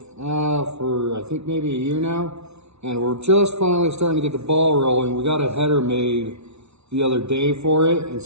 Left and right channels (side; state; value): left; late; 0.81 ms